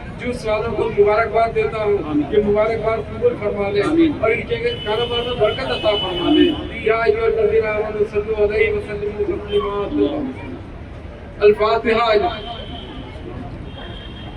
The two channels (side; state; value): both; identical; correlation 1.00